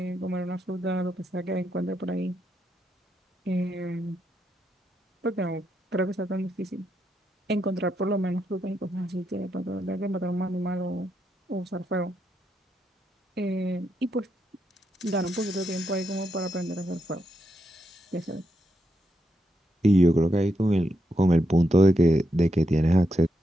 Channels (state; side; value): normal; both; correlation 0.82